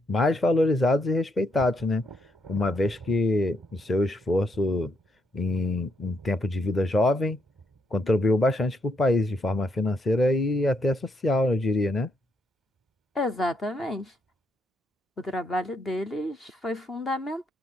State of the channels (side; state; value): both; normal; correlation 0.76